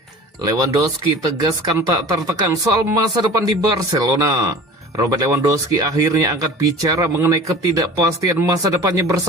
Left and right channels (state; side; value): normal; both; correlation 0.40